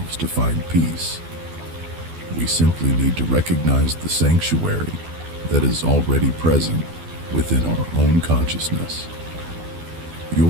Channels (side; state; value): left; late; 12 ms